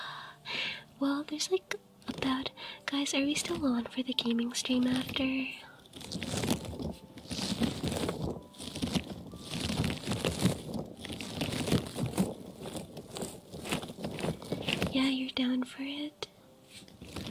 Well, there's like about... Guys, are we still on for the gaming stream after? Yeah, you're down for it?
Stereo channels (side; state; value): both; identical; correlation 1.00